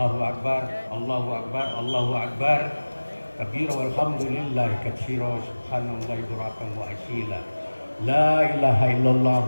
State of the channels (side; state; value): both; inverted; correlation -1.00